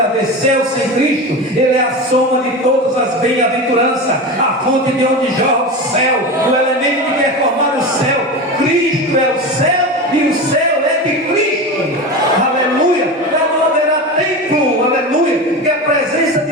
céu sem Cristo. Ele é a soma de todas as bem-aventuranças, a fonte de onde jorra o céu, o elemento que quer formar o céu. Cristo é o céu e o céu é de Cristo. Aleluia. Lá não haverá templo, aleluia, porque a presença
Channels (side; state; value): both; normal; correlation 0.25